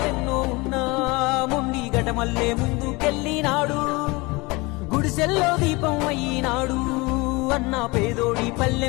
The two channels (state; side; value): quieter; right; 24.6 dB